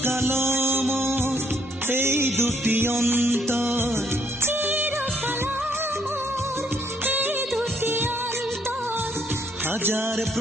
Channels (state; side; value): normal; both; correlation 0.69